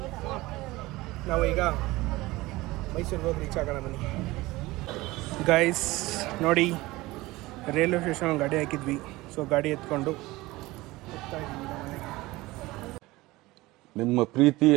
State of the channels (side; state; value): left; quieter; 19.8 dB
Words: ನಾವು ಈಗ ಮೈಸೂರಿಗೆ ಹೋಗಿ ರೀಚ್ ಆಗೋಣ ಬನ್ನಿ ಗೈಸ್. ನೋಡಿ, ರೈಲ್ವೆ ಸ್ಟೇಷನ್ ಗಾಡಿ ಹಾಕಿದ್ವಿ. ಸೊ ಗಾಡಿ ಎತ್ಕೊಂಡು ಹೋಗ್ತಾ ಇದ್ದೀವಿ ಮನೆಗೆ. ನಿಮ್ಮ ಪ್ರೀತಿ,